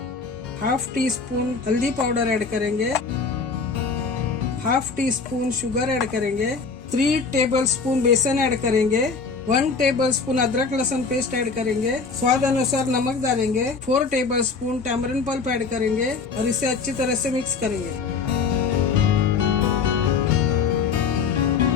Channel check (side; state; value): right; quieter; 5.0 dB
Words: हाफ टी स्पून हल्दी पाउडर ऐड करेंगे। Half tea spoon sugar add करेंगे। 3 टेबल स्पून बेसन ऐड करेंगे। 1 टेबल स्पून अदरक लहसुन पेस्ट ऐड करेंगे। स्वाद अनुसार नमक डालेंगे। 4 tablespoon tamarind pulp add करेंगे और इसे अच्छी तरह से मिक्स करेंगे।